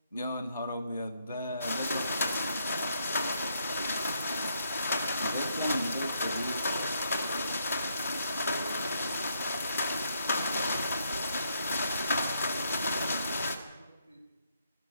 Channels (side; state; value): both; inverted; correlation -0.74